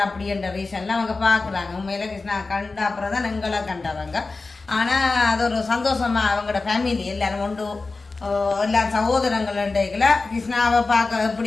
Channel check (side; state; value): right; quieter; 3.7 dB